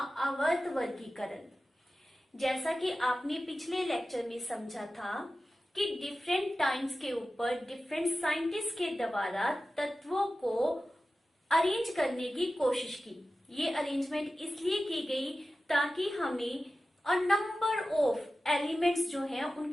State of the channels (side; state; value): both; normal; correlation 0.94